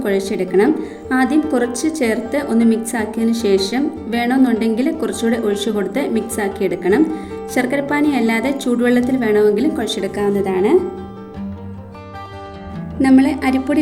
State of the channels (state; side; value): identical; both; correlation 1.00